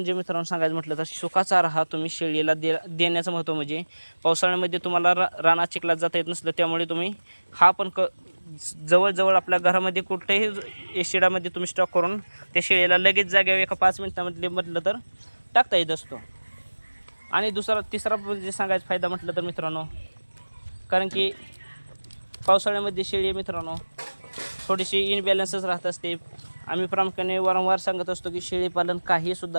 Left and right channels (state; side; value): inverted; both; correlation -1.00